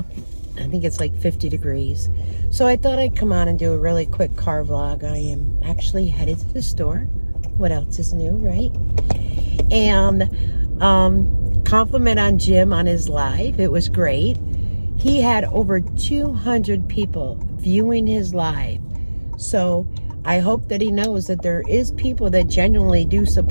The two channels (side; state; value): both; inverted; correlation -1.00